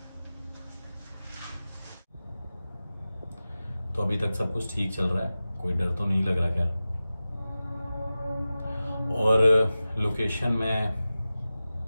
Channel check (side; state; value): both; inverted; correlation -0.95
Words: तो अभी तक सब कुछ ठीक चल रहा है, कोई डर तो नहीं लग रहा खैर। और लोकेशन में